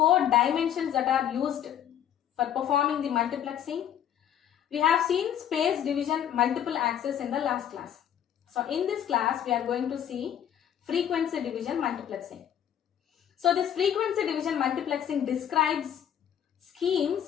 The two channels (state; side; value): quieter; right; 9.9 dB